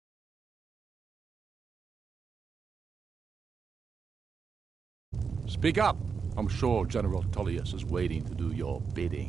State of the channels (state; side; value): quieter; left; 5.7 dB